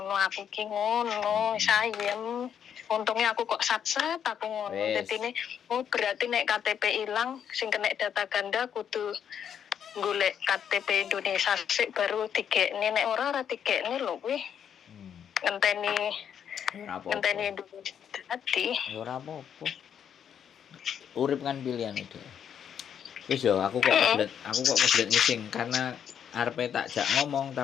aku ki ngono sayem. Untungnya aku kok sat-sat aku ngono. Dadine berarti nek KTP ilang sing kena data ganda kudu golek KTP Indonesia sik baru digekne nek ora digekne lho kuwi. Ngenteni Indonesia dadi. Ora apa-apa. Urip kan pilihan itu. Wis yo aku kok kebelet ngising karena arepe tak jak ngomong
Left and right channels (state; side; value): quieter; right; 8.5 dB